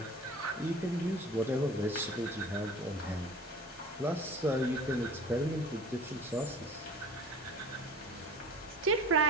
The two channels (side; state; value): both; normal; correlation 0.42